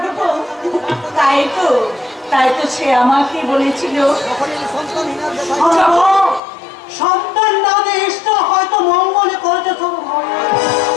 তাই তো সে আমাকে বলেছিল, সন্তান না দিয়ে ঈশ্বর হয়তো মঙ্গলে করেছে শুধু।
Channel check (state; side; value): drops out; right; at 6.4 s